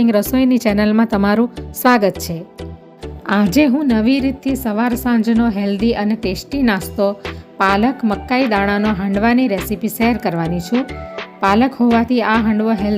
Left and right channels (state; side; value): identical; both; correlation 1.00